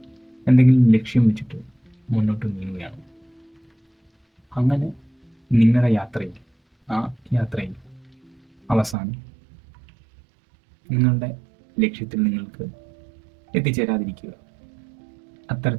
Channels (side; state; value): left; drops out; at 9.0 s